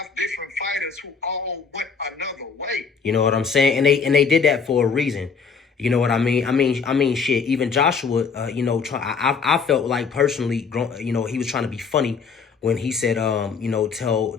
5 different fighters who all went another way. You know what I'm saying? And they did that for a reason. You know what I mean? I mean, shit. Even Joshua, I felt like personally, he was trying to be funny when he said,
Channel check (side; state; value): right; quieter; 5.7 dB